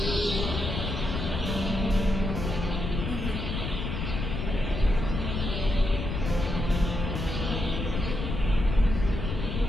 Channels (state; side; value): noise; left; rumble, 3 dB below the sound